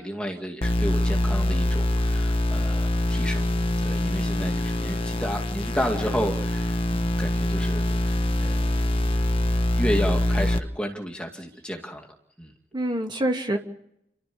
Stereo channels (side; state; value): both; normal; correlation 0.91